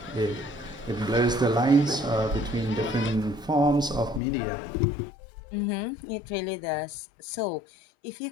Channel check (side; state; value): right; drops out; at 4.2 s